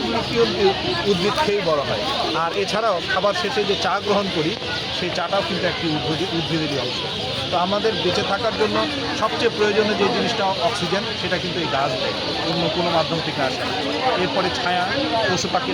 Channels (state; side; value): identical; both; correlation 1.00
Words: কি উদ্ভিদ খেয়েই বড় হয়। আর এছাড়াও খাবার শেষে যে চা গ্রহণ করি, সেই চাটাও কিন্তু একটি উদ্ভিদেরই অংশ। তো আমাদের বেঁচে থাকার জন্য সবচেয়ে প্রয়োজনীয় যে জিনিসটা অক্সিজেন, সেটা কিন্তু এই গাছ দেয়, অন্য কোনো মাধ্যম থেকে আসে না। এরপরে ছায়া, পশু